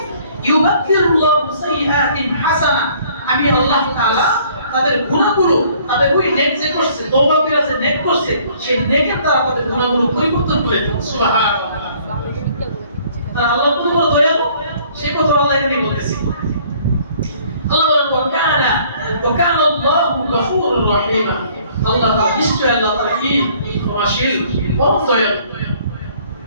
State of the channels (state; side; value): inverted; both; correlation -0.58